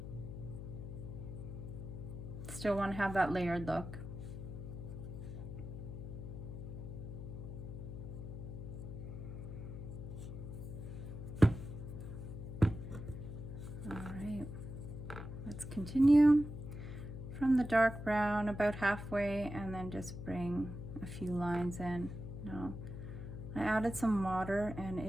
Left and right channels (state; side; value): noise; left; hum, 8 dB below the sound